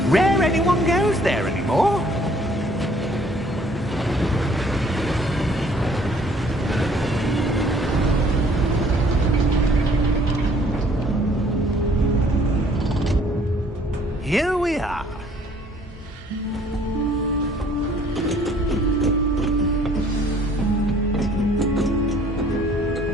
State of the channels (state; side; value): normal; both; correlation 0.59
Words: Rare anyone goes there anymore. Here we are.